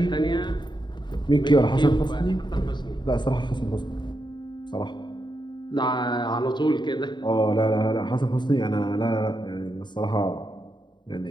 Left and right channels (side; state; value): right; late; 0.22 ms